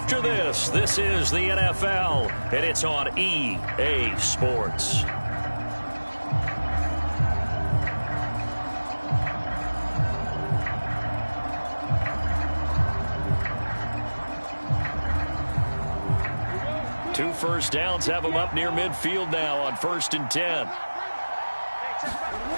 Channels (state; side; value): inverted; both; correlation -1.00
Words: this. This is the NFL, and it's on EA Sports. Two first downs have them up near midfield now on 1st and 10.